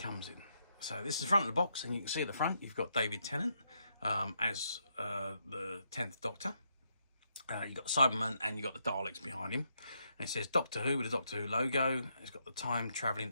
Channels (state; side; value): inverted; both; correlation -0.78